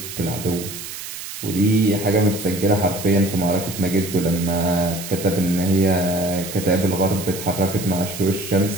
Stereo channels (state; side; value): noise; right; hiss, 10 dB below the sound